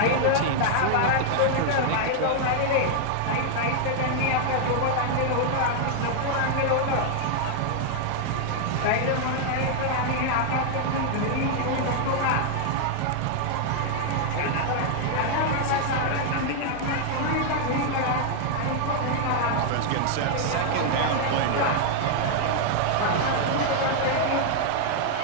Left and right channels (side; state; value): both; different; correlation 0.00